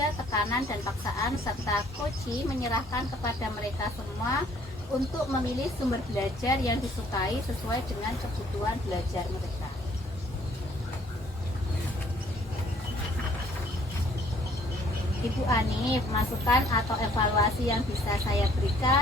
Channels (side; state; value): both; normal; correlation 0.61